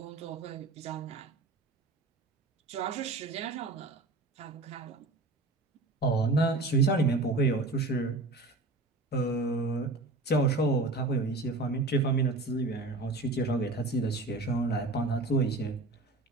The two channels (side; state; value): left; quieter; 3.1 dB